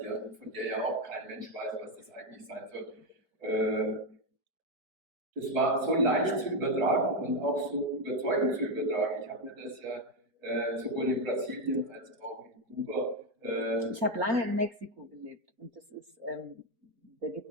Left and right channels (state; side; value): late; left; 4.5 ms